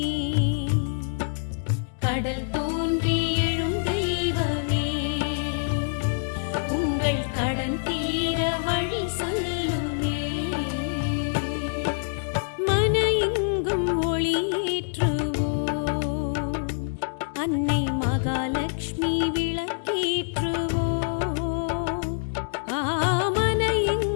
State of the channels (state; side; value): silent; right; digital silence